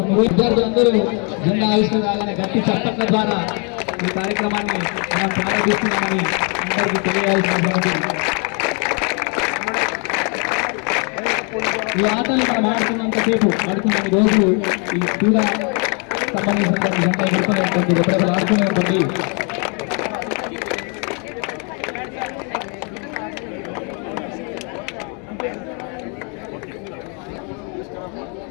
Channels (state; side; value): quieter; right; 36.4 dB